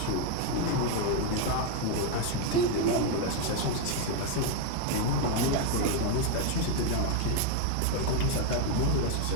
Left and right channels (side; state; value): both; different; correlation 0.01